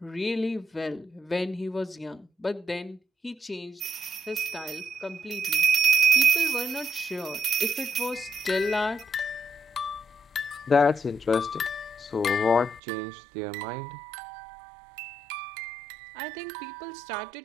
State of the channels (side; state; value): left; drops out; at 12.8 s